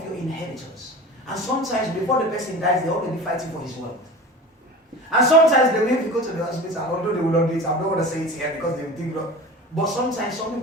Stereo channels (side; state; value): both; normal; correlation 0.35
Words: your inheritors. And sometimes before the person dies, they're already fighting for his wealth. And sometimes they will even go to the hospital, although they will not do it. I don't want to say it here because they think, but sometimes some